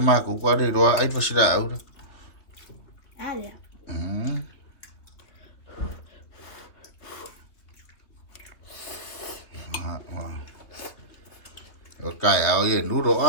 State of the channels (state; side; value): late; right; 3.0 ms